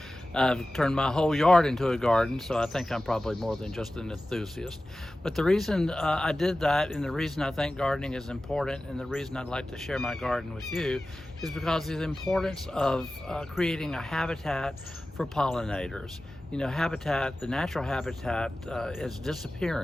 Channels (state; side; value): normal; both; correlation 0.96